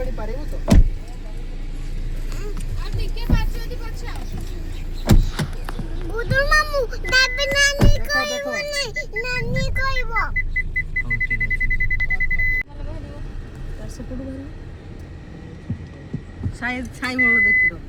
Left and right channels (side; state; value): both; identical; correlation 1.00